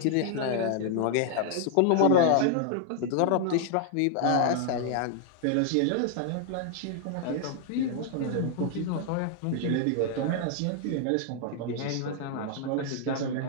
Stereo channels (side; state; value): both; different; correlation 0.00